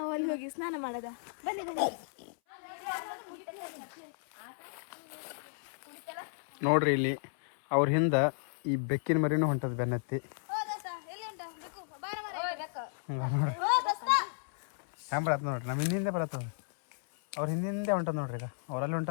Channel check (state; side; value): silent; right; 55 dB below the other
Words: ಅಲ್ಲಿ ಹೋಗಿ ಸ್ನಾನ ಮಾಡೋದ ಬನ್ನಿ ಬನ್ನಿ ನೋಡ್ರಿ ಇಲ್ಲಿ ಅವ್ರ ಹಿಂದ ಈ ಬೆಕ್ಕಿನ ಮರಿನೂ ಹೊಂಟದ ಬೆನ್ನತ್ತಿ ನೋಡ್ರಿ ಹ್ಯಾಂಗ ಬರತ್ತ ನೋಡ್ರಿ ನಮ್ಮ ಹಿಂದೆ ಬರತ್ತದ ಅವ್ರ ಹಿಂದೆ ಹೊಂಟದ ನೋಡ್ರಿ ಈಗ ಅವ್ರಲ್ಲಿ